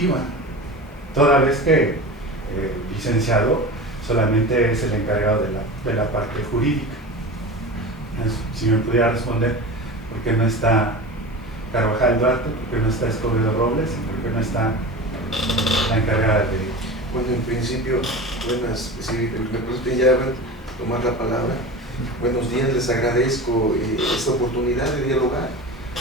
toda vez que el licenciado solamente es el encargado de la parte jurídica. Si me pudiera responder, ¿por qué no está Carvajal Duarte? ¿Por qué no está Escobedo Robles? ¿Por qué no está la encargada de...? Bueno, en principio, buenas, si me permiten ya tomar la palabra. Buenos días, les agradezco esta oportunidad de dialogar.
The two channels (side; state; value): both; normal; correlation 0.31